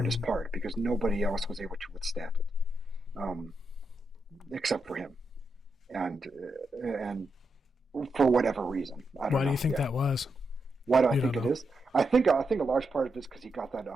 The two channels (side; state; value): both; normal; correlation 0.84